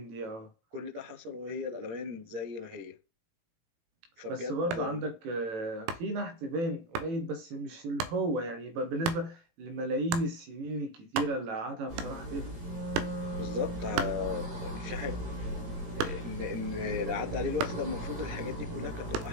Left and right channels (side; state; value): left; late; 18 ms